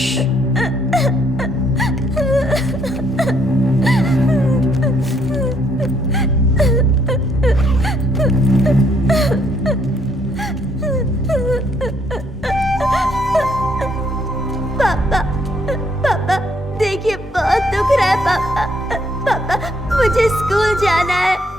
पापा, पापा, देखिए बहुत दुख रहा है पापा। पापा, मुझे स्कूल जाना है।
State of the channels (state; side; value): normal; both; correlation 0.69